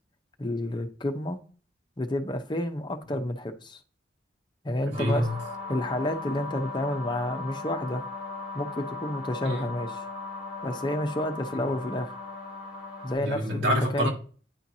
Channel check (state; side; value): normal; both; correlation 0.58